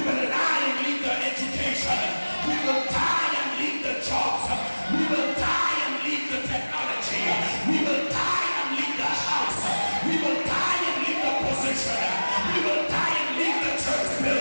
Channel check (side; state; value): both; inverted; correlation -1.00